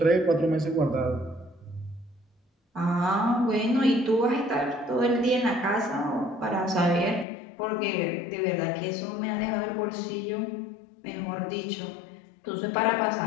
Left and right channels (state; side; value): drops out; right; at 7.2 s